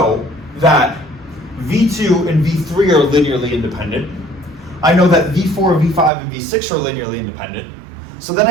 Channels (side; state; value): left; drops out; at 6.1 s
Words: that V2 and V3 are linearly independent. I know that V4, V5, and V6 are linearly independent. So then